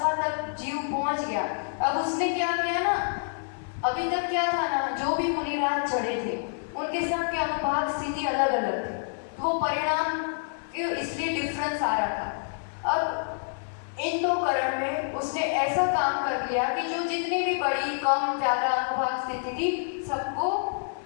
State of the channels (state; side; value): silent; right; 58 dB below the other